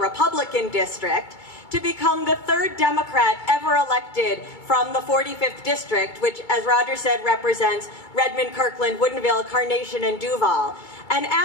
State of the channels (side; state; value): right; late; 2.3 ms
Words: district, to become the third Democrat ever elected from the 45th district, which, as Roger said, represents Redmond, Kirkland, Woodinville, Carnation, and Duval. And